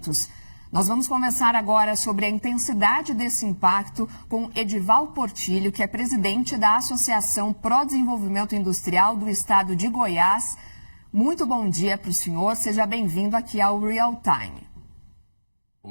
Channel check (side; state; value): both; inverted; correlation -1.00